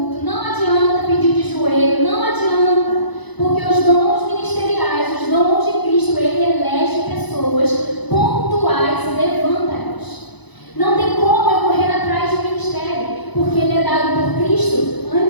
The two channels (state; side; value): late; right; 1.0 ms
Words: não adianta pedir de joelho, não adianta, porque os dons ministeriais, os dons de Cristo, Ele elege pessoas pontuais e levanta elas. Não tem como eu correr atrás de um ministério, porque ele é dado por Cristo